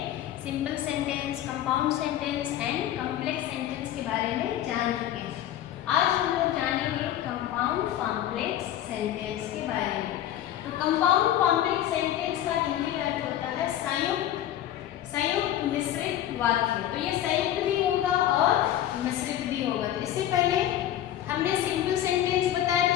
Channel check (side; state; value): right; quieter; 12.0 dB